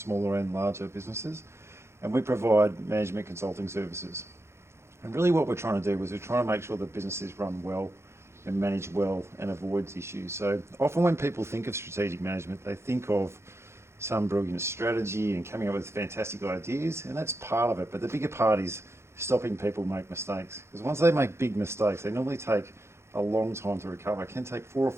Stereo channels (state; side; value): late; left; 0.13 ms